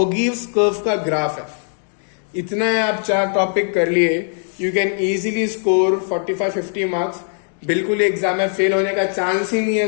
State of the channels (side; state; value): right; silent; 66 dB below the other